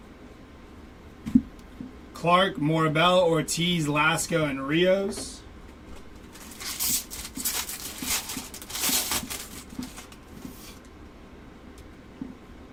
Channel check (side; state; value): both; identical; correlation 1.00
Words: Clark, Morabel, Ortiz, Lasco, and Rios.